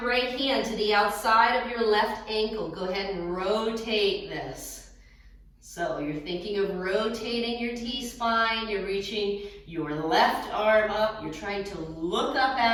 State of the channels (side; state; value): both; identical; correlation 1.00